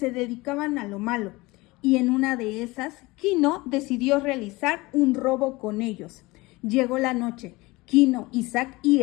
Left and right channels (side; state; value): right; quieter; 22.1 dB